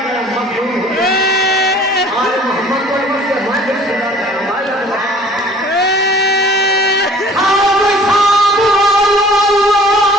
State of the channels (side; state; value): both; normal; correlation 0.51